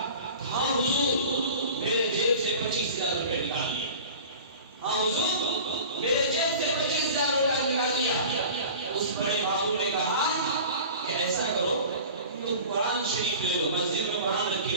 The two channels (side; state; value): both; inverted; correlation -0.39